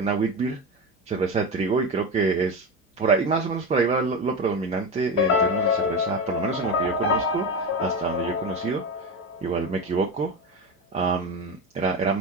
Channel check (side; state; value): both; normal; correlation 0.20